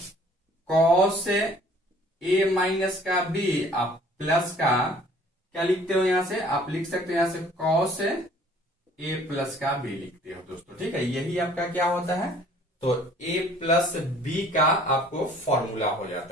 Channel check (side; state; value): both; normal; correlation 0.54